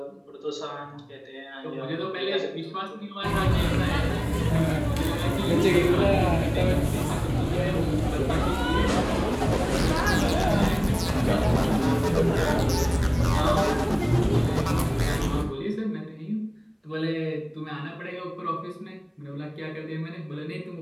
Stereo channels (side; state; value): both; identical; correlation 1.00